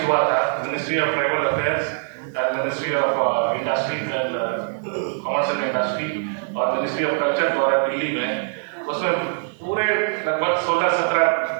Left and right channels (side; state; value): left; silent; digital silence